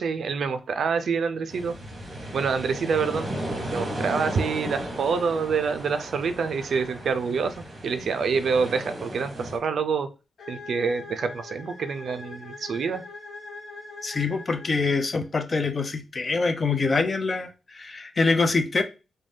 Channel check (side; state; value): both; normal; correlation 0.79